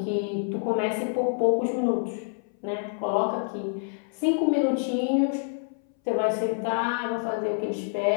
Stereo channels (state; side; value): silent; right; 59 dB below the other